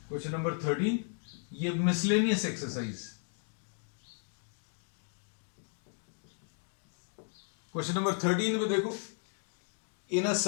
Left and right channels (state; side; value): silent; right; 55 dB below the other